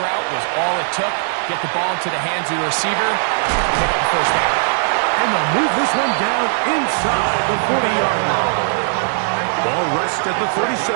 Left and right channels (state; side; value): silent; left; digital silence